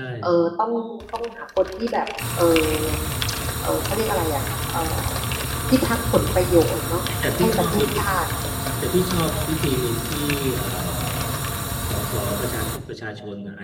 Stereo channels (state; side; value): identical; both; correlation 1.00